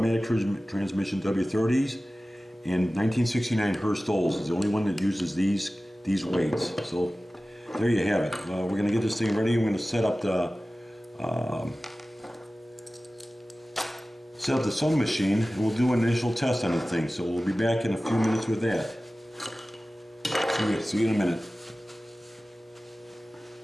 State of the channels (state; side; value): normal; both; correlation 0.96